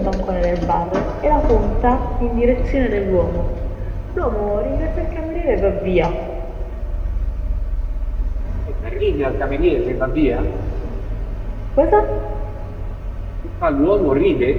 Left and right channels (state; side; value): identical; both; correlation 1.00